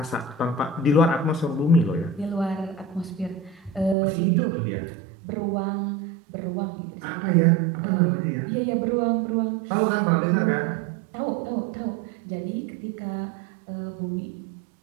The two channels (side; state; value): left; drops out; at 4.0 s